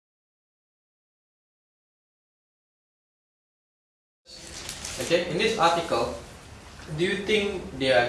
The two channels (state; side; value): identical; both; correlation 1.00